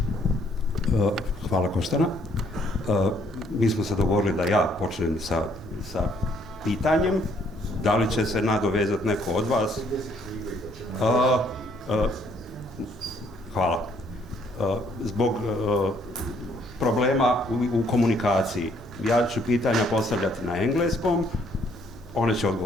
Hvala Koštana. Mi smo se dogovorili da ja počnem sa pitanjem. Da li će se nadovezati neko od vas? Hvala. Zbog problema u komunikaciji. Ja ću pitanja postavljati na engleskom, one će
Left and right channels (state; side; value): normal; both; correlation 0.66